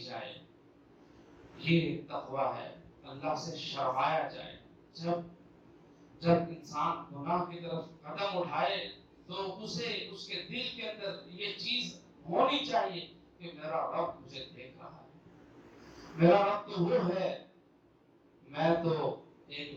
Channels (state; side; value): identical; both; correlation 1.00